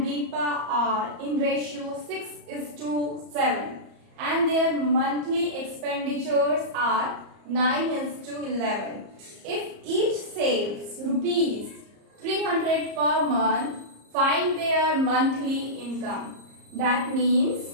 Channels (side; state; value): left; late; 34 ms